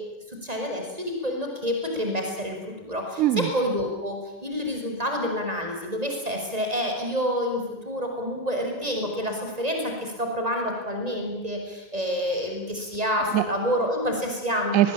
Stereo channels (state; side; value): late; left; 1.9 ms